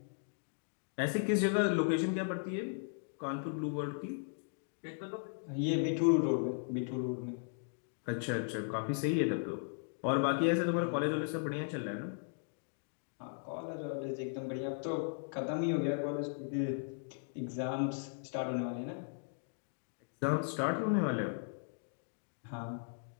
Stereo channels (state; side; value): silent; right; digital silence